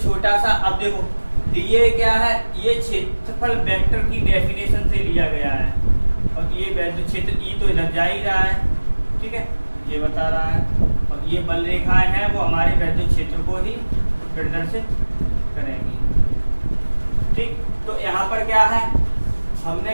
छोटा सा, अब देखो dA क्या है, ये क्षेत्रफल वेक्टर की डेफिनेशन से लिया गया है, और ये वैद्युत क्षेत्र E तो इधर जा ही रहा है। ठीक है, ये बता रहा है, और ये बल रेखाएं हैं वो हमारे वैद्युत क्षेत्र को ही प्रदर्शित करेंगी। ठीक, तो यहाँ पर क्या है,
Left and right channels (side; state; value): both; inverted; correlation -1.00